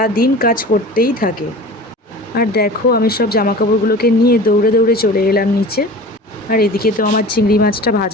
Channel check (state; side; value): normal; both; correlation 0.38